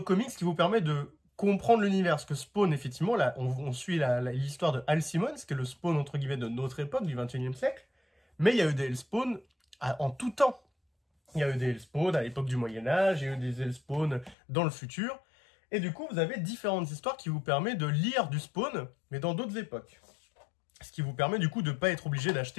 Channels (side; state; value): right; drops out; at 14.4 s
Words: comics qui vous permettent de comprendre l'univers. Parce que Spawn, effectivement, là, on suit l'histoire de Al Simmons, qui est le Spawn, entre guillemets, de notre époque, du 21e siècle, mais il y a eu des Elseworlds en tout temps. Il y a eu des Elseworlds à l'époque du Moyen-Âge, il y a eu des Elseworlds dans le futur. Et du coup, vous avez différentes histoires qui vous permettent de lire du Spawn, mais dans d'autres époques. Ce qui vous permet du coup de ne pas être obligé